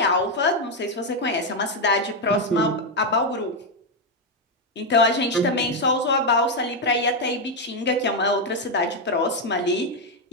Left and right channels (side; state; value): both; normal; correlation 0.03